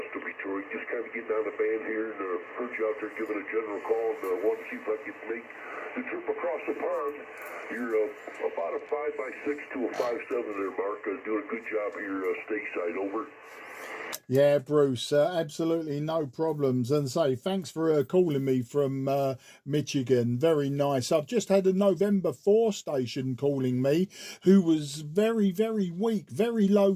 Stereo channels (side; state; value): both; identical; correlation 1.00